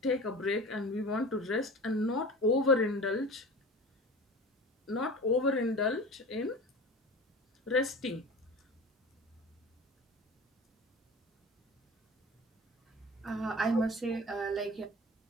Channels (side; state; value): both; normal; correlation 0.36